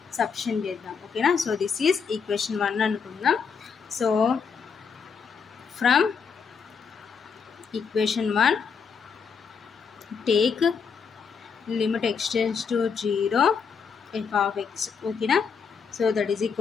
substitute చేద్దాం. ఓకేనా? సో దిస్ ఈజ్ ఈక్వేషన్ 1 అనుకుందాం. So from equation 1 take limit x tends to 0, f of x. okay na? So that is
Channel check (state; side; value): quieter; right; 6.1 dB